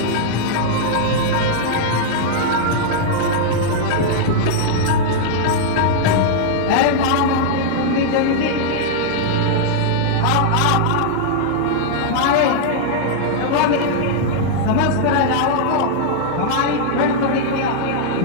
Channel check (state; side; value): different; both; correlation -0.01